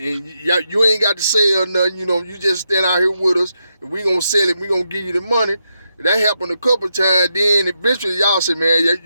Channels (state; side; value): inverted; both; correlation -0.83